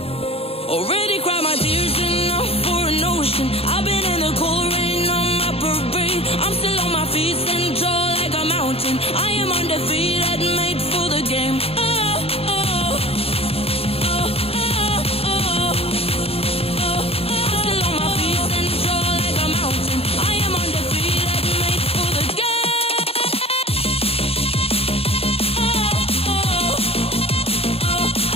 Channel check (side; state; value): right; late; 0.28 ms